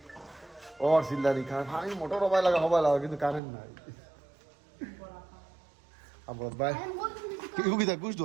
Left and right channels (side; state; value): left; drops out; at 3.4 s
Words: ওর চিল্লানি কারণ আমি মোটর হবাই লাগা কিন্তু কারেন্ট নাই আমার ভাই ইউকিতা গুছ